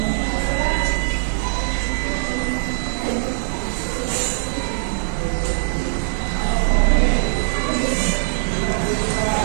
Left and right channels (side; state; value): left; silent; digital silence